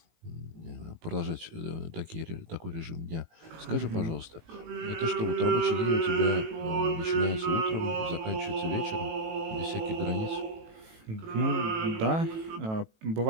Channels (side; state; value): left; late; 18 ms